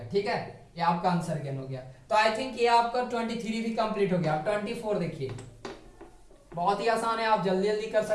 ठीक है, ये आपका आंसर गेन हो गया। तो आई थिंक ये आपका 23 भी कंप्लीट हो गया। 24 देखिए, बहुत ही आसान है, आप जल्दी जल्दी कर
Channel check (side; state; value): both; identical; correlation 1.00